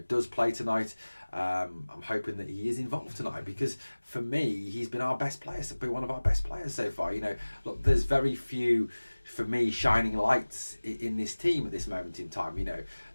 does play tonight. I'm hoping that he is involved tonight, because for me, he's been our best player. Been one of our best players so far. Look, there's very few, for me, shining lights in this team at this moment in time.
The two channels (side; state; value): both; inverted; correlation -1.00